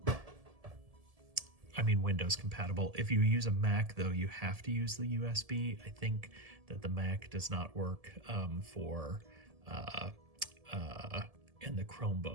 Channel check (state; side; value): late; left; 1.7 ms